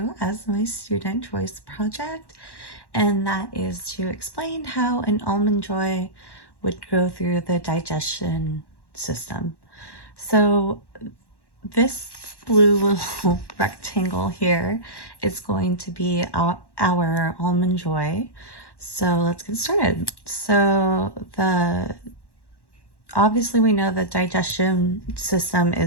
as my student choice project, and that is to explain how an almond joy would go through the digestion system. So this blue little rectangle here is going to be our almond joy. So let's get started. Obviously we know the digestion system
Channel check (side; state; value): right; late; 1.1 ms